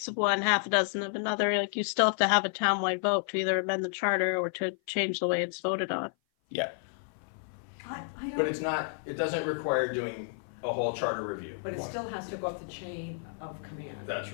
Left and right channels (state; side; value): silent; right; 56 dB below the other